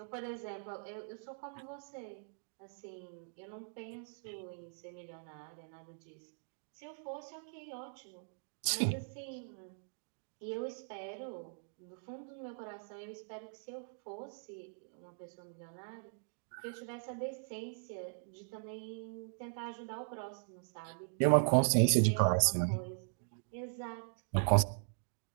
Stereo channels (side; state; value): left; silent; digital silence